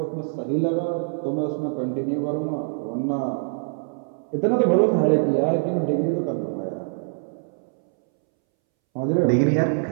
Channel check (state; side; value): silent; left; 63 dB below the other